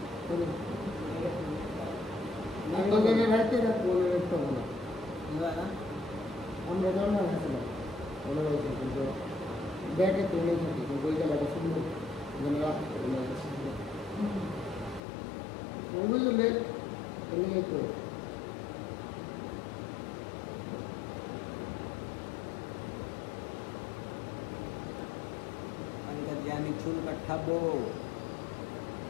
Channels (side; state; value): right; drops out; at 15.0 s